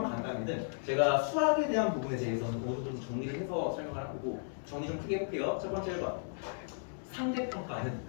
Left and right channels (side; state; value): right; silent; digital silence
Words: 간단히는 제가 수학에 대한 부분에 대해서는 모두 좀 정리를 해서 설명을 하고 정리 좀 크게 해볼게요. 첫 번째 1번 상대평가는